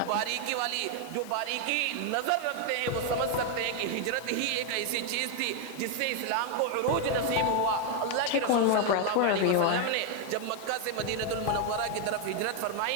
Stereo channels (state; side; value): different; both; correlation 0.01